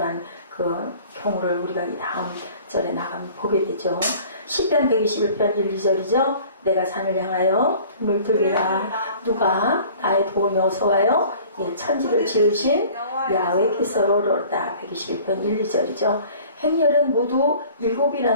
그 경우를 우리가 이 다음 절에 나가면 보게 되죠. 시편 121편 1, 2절이죠. 내가 산을 향하여 등을 들리라. 누가 나의 도움이 어서와요? 천지를 지으신 야훼께서 오르다. 121편 1, 2절이죠. 행렬은 모두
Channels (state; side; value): inverted; both; correlation -0.48